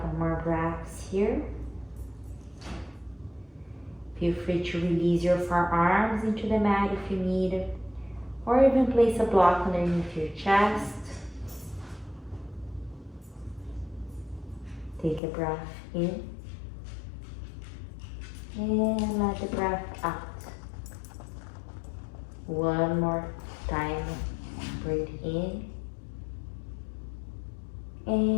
more breaths here. Feel free to release your forearms into the mat if you need, or even place a block underneath your chest. Take a breath in, and let the breath out. One more time, breathe in,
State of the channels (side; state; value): right; drops out; at 15.2 s